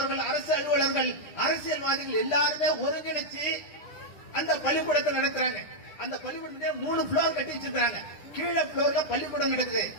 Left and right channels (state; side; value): late; right; 10 ms